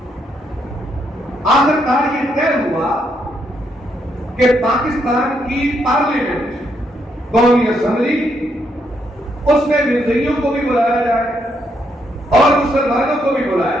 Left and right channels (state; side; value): normal; both; correlation 0.76